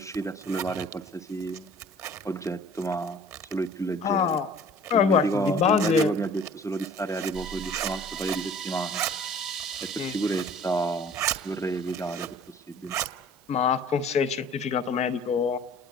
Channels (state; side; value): normal; both; correlation 0.49